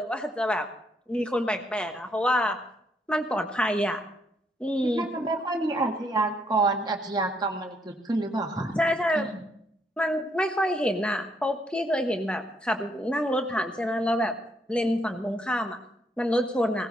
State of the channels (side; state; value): both; normal; correlation 0.72